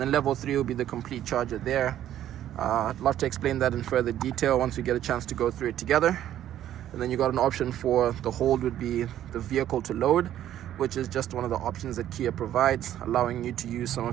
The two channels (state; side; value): quieter; left; 11.8 dB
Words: then level 3 will be the complete charger there. I'd love to explain that in further detail once we get a chance to go through it together. And then you got an option for the hold would be the vehicle to load, which is just one of the options that Kia provides, allowing you to use some